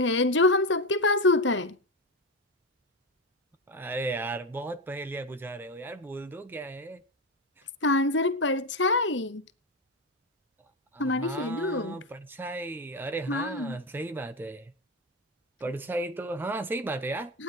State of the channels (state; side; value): normal; both; correlation 0.14